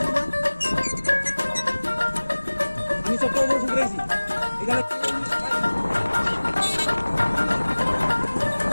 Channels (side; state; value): both; inverted; correlation -1.00